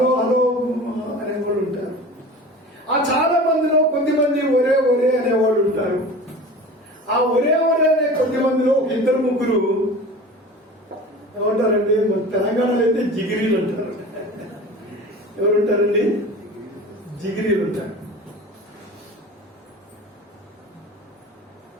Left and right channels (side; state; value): both; normal; correlation 0.37